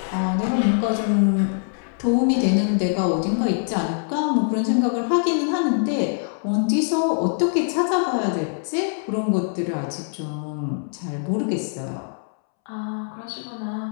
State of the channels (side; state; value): right; silent; 63 dB below the other